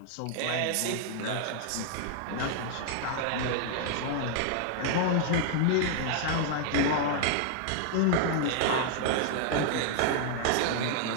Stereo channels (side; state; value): both; different; correlation 0.00